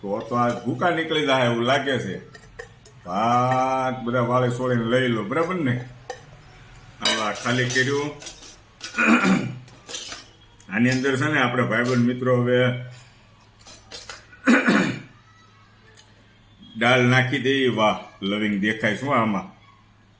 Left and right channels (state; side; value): identical; both; correlation 1.00